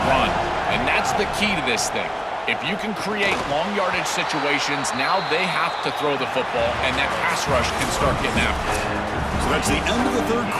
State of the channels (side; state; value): both; identical; correlation 1.00